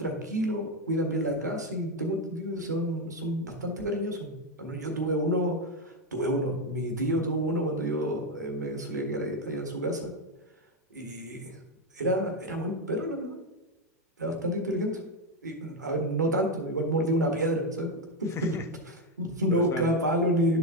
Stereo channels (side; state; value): both; normal; correlation 0.08